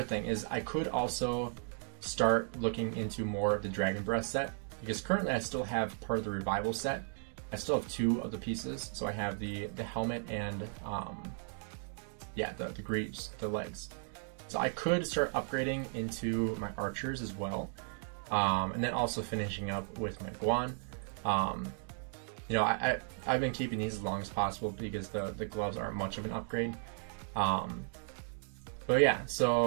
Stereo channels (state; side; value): silent; left; 54 dB below the other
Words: thing, is I could also start looking into more of the Dragon Breath set, because currently I still have part of the Revival set. I still have 2 of the pieces, so I have the helmet and the greaves, the legs. So I could start upgrading into my archers as well, and then also finishing up with my Guan. I've been keeping these as long as possible because the gloves aren't much of an upgrade. But yeah,